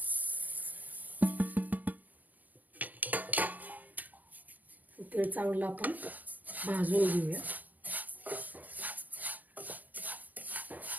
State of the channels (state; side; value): late; left; 0.082 ms